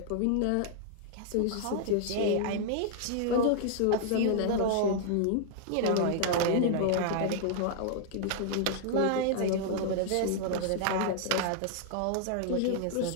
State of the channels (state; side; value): different; both; correlation -0.01